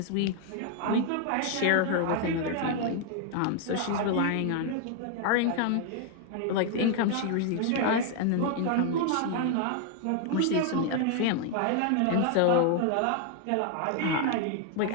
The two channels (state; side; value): different; both; correlation 0.00